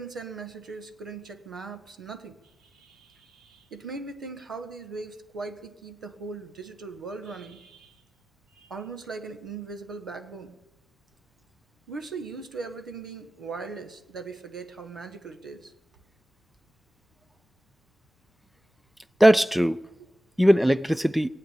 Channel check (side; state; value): both; normal; correlation 0.94